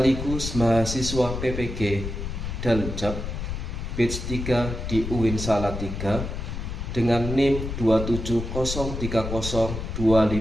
mahasiswa PPG Daljab batch 3 di UIN Salatiga dengan NIM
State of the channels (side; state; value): left; noise; rumble, 5 dB below the sound